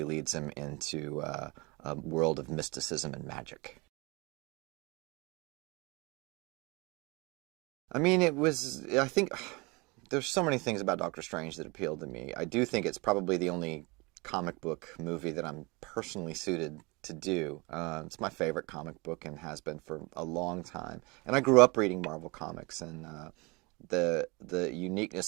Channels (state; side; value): quieter; left; 26.6 dB